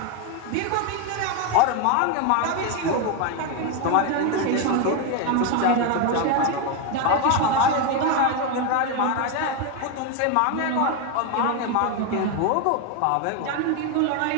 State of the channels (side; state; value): both; different; correlation 0.01